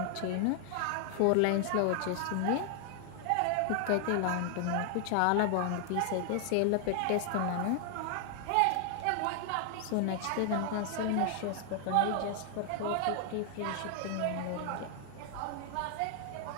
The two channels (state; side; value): different; both; correlation 0.00